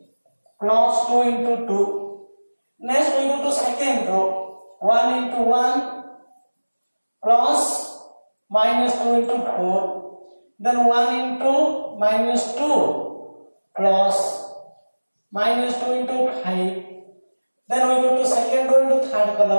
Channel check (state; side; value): inverted; both; correlation -1.00